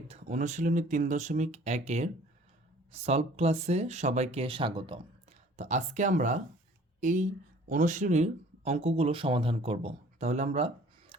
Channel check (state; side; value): normal; both; correlation 0.52